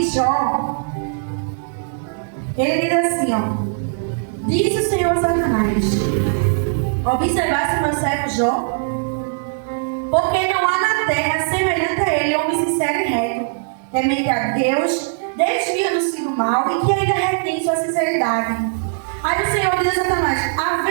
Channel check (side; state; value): left; silent; digital silence